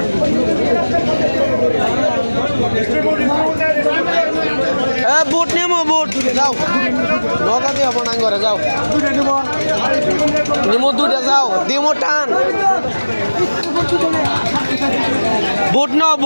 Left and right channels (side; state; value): both; inverted; correlation -1.00